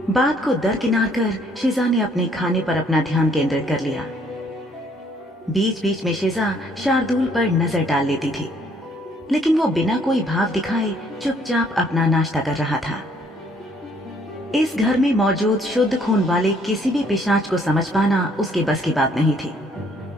बात को दरकिनार कर शिजा ने अपने खाने पर अपना ध्यान केंद्रित कर लिया। बीच बीच में शिजा शार्दुल पर नजर डाल लेती थी, लेकिन वो बिना कोई भाव दिखाए चुपचाप अपना नाश्ता कर रहा था। इस घर में मौजूद शुद्ध खून वाले किसी भी पिशाच को समझ पाना उसके बस की बात नहीं थी।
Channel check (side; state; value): both; normal; correlation 0.64